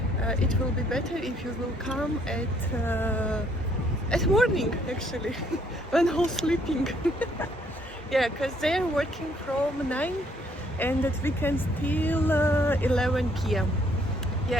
it will be better if you will come at morning actually, when all sleeping. Yeah, because they're working from 9 and at weekends till 11 p.m.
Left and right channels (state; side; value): normal; both; correlation 0.66